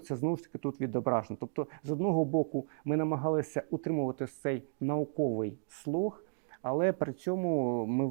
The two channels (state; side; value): silent; left; digital silence